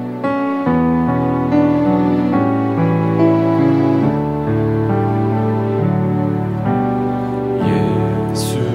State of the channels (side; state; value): both; identical; correlation 1.00